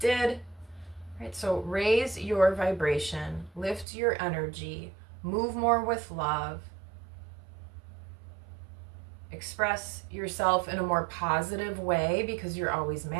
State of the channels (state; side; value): drops out; left; at 3.9 s